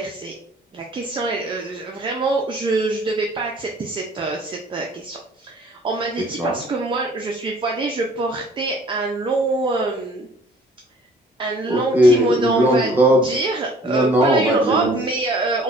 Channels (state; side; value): normal; both; correlation 0.54